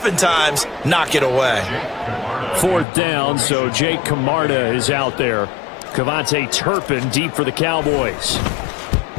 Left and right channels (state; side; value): drops out; right; at 2.9 s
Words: knock it away. 4th down, so Jake Camarda is out there. Cavante Turpin deep for the Cowboys.